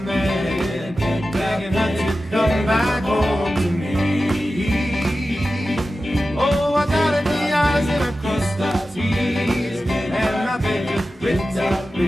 man, begging her to come back home to me. Oh, I got the eyes and I crossed the T's, and I beg you, pretty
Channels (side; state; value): both; normal; correlation 0.94